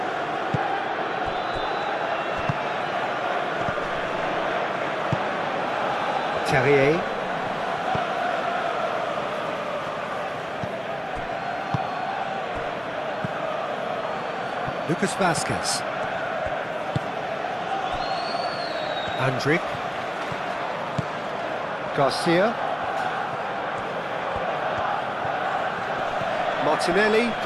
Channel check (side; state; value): both; identical; correlation 1.00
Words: Terrier. Lucas Vazquez. Andrick. Garcia. Martinelli